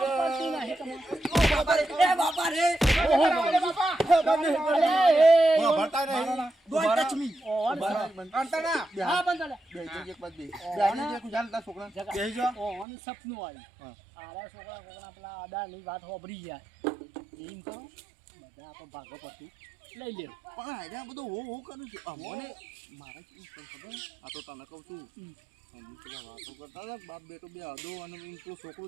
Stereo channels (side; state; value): left; drops out; at 12.9 s